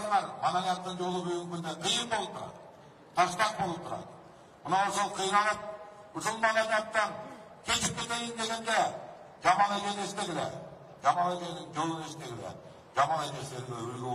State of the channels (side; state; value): both; identical; correlation 1.00